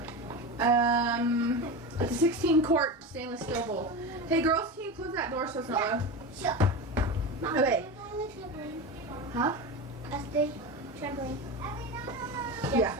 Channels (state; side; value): normal; both; correlation 0.23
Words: It's a 16 quart stainless steel bowl. Hey girls, can you close that door so it's not loud? Sure. Okay. Huh? That's the trampoline.